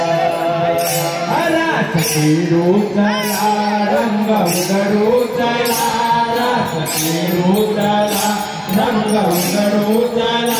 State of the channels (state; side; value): identical; both; correlation 1.00